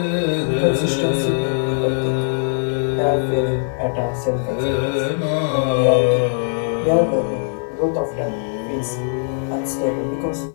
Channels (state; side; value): silent; right; digital silence